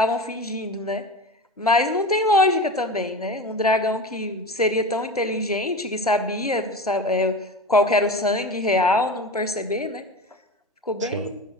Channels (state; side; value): normal; both; correlation 0.30